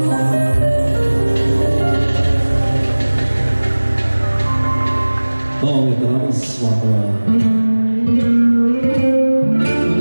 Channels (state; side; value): inverted; both; correlation -1.00